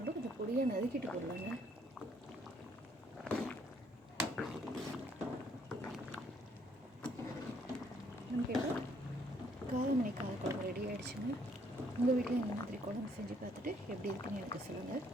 கொஞ்சம் பொடியாக நறுக்கிட்டு போடலாங்க. நமக்கு இப்போ காரமணி காரக்குழம்பு ரெடி ஆகிடுச்சுங்க. உங்கள் வீட்டில் இந்த மாதிரி குழம்பு செஞ்சு பார்த்துட்டு எப்படி இருக்குன்னு எனக்கு சொல்லுங்கள்.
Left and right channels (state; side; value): normal; both; correlation 0.67